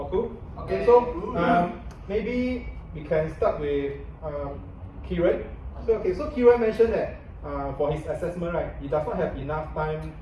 cool. Okay, so maybe we can start with Kieran. So Kieran mentioned that for his assessment, right, he does not have enough time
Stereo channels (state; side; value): identical; both; correlation 1.00